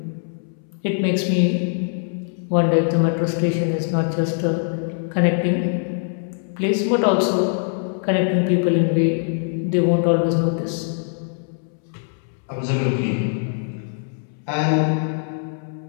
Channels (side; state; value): right; silent; 64 dB below the other